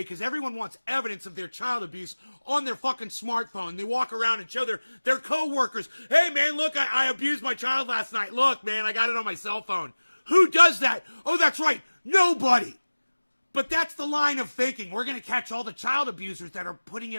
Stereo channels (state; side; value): inverted; both; correlation -1.00